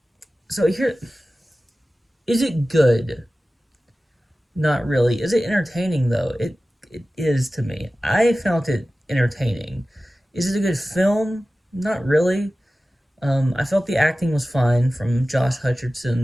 so here. Is it good? Not really. Is it entertaining though? It is to me. I found it entertaining. Is it a good film? Not really. I felt the acting was fine from Josh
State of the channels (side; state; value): both; normal; correlation 0.96